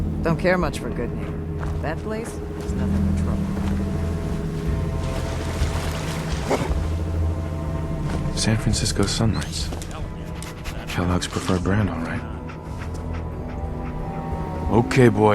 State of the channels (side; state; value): both; identical; correlation 1.00